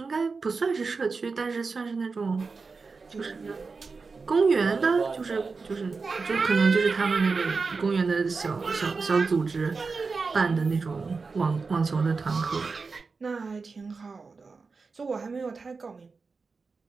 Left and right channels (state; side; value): quieter; left; 4.5 dB